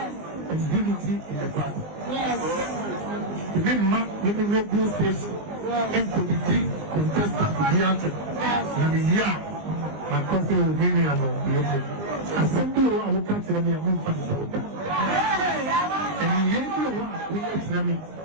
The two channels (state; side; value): late; left; 19 ms